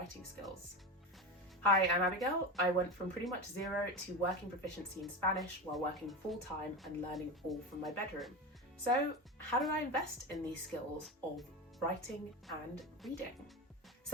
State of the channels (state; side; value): normal; both; correlation 0.22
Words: skills. Hi, I'm Abigail. I went from pretty much 0 to working proficiency in Spanish while working full-time and learning all from my bedroom. So how do I invest in these skills of writing and reading?